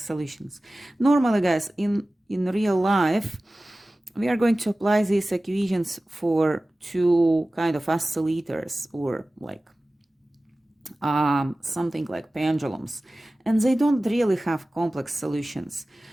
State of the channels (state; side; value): normal; both; correlation 0.97